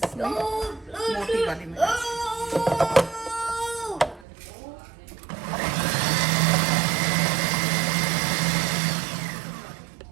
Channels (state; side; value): drops out; left; at 4.2 s